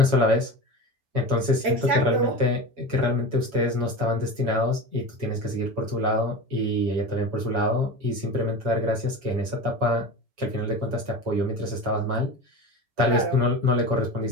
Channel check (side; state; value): left; late; 6.5 ms